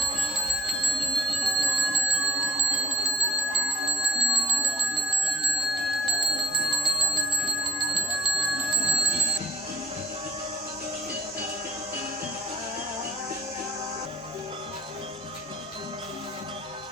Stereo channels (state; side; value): normal; both; correlation 0.47